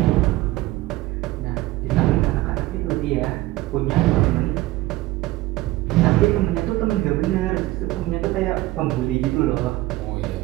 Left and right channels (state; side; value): quieter; left; 18.0 dB